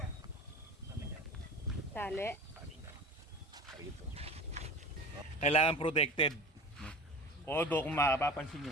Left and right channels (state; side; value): normal; both; correlation 0.37